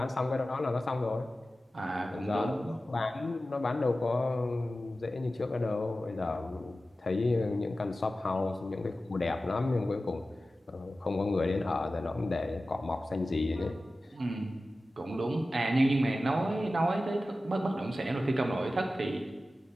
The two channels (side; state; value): both; normal; correlation 0.95